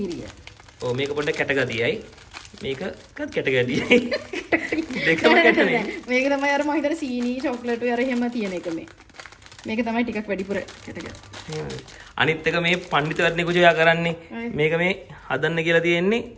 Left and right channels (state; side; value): identical; both; correlation 1.00